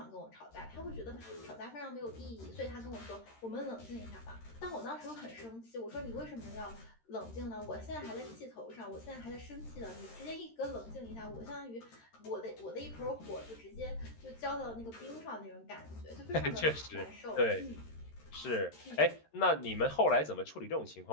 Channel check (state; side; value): late; right; 13 ms